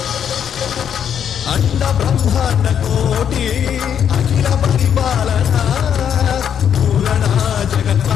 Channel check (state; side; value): quieter; right; 8.6 dB